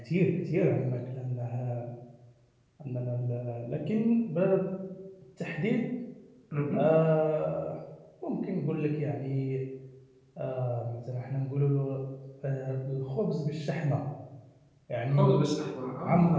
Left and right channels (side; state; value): both; identical; correlation 1.00